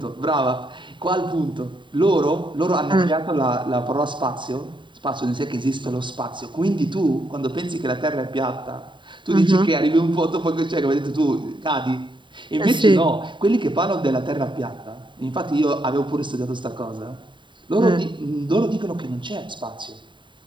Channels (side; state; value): left; late; 0.23 ms